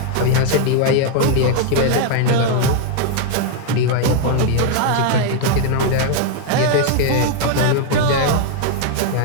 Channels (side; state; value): both; different; correlation 0.00